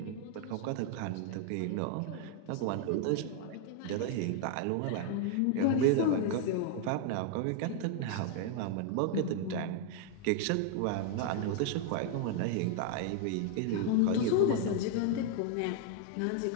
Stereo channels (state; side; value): different; both; correlation 0.00